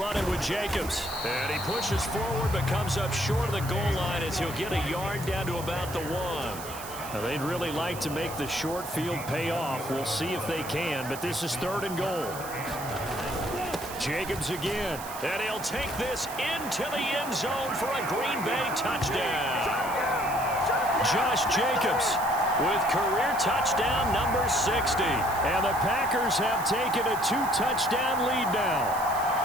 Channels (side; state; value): right; noise; hiss, 12 dB below the sound